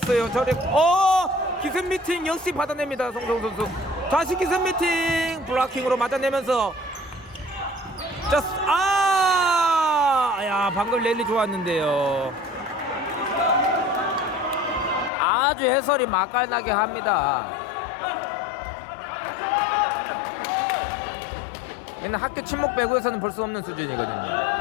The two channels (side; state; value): right; drops out; at 15.1 s